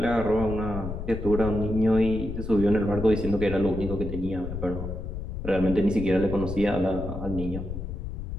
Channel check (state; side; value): noise; left; rumble, 6 dB below the sound